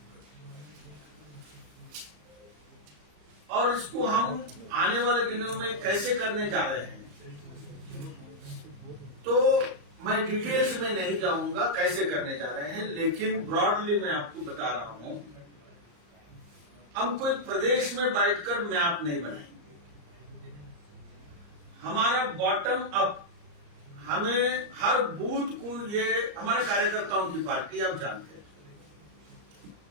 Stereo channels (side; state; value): left; late; 34 ms